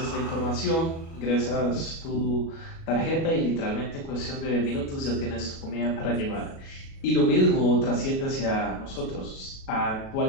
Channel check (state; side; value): late; right; 37 ms